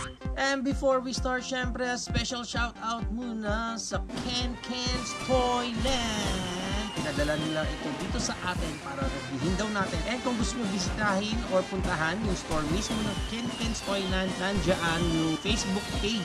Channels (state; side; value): identical; both; correlation 1.00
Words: And before we start, syempre, a special shout out muna sa Ken's Toyland. Pinadala nila ito dito sa atin para reviewin daw natin. And kung gusto nyo bisitahin or puntahan yung store mismo ng Ken's Toyland, nandyan yung Facebook